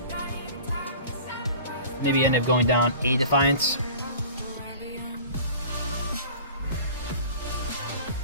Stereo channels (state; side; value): inverted; both; correlation -0.42